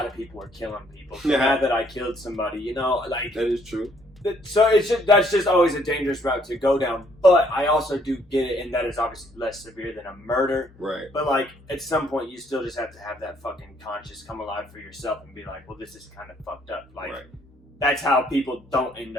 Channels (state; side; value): normal; both; correlation 0.66